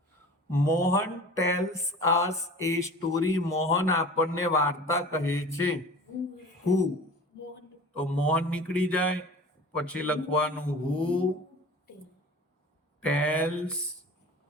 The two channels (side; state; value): both; normal; correlation 0.40